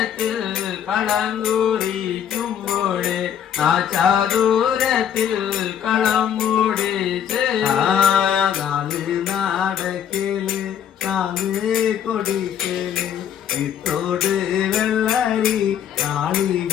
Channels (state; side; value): quieter; right; 9.1 dB